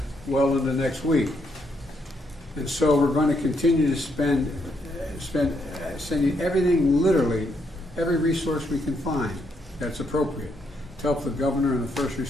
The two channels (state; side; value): normal; both; correlation 0.76